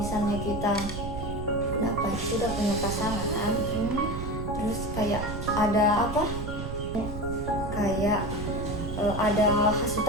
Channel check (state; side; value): noise; right; rumble, 6 dB below the sound